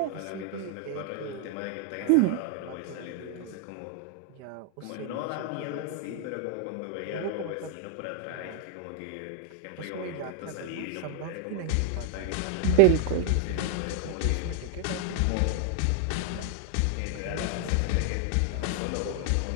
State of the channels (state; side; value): different; both; correlation 0.00